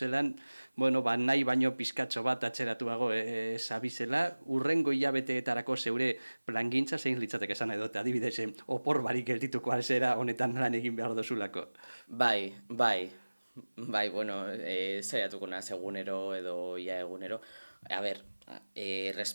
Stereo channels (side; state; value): both; inverted; correlation -1.00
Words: bueno, nahi baino pizkatxo bat atxeratuago zabizela, urrengo hilabeteetarako zeure plangintza zein litzateke esan edo, adibidez, opor barik geldituko alzera honetan lan egin behar dozulako. Bai, bueno, zaiatuko naz egunero edo ia egunero. A ber,